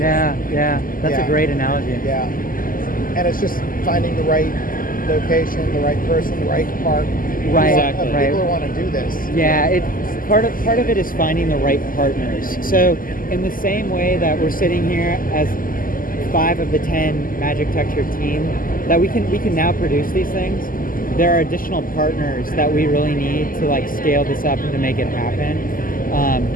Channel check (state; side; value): late; right; 0.41 ms